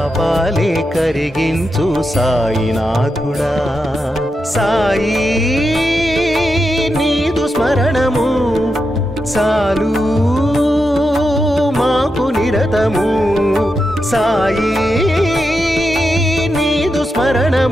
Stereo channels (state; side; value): normal; both; correlation 0.87